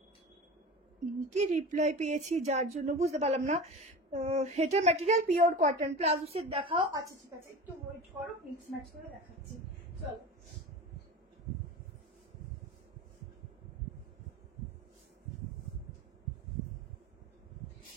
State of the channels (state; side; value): normal; both; correlation 0.32